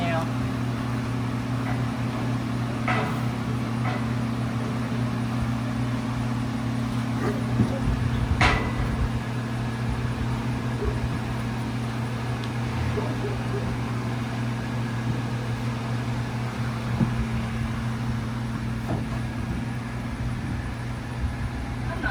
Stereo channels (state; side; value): identical; both; correlation 1.00